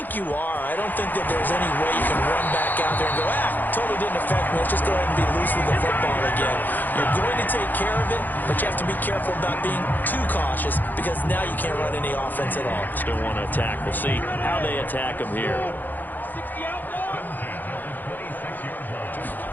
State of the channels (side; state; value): right; late; 0.086 ms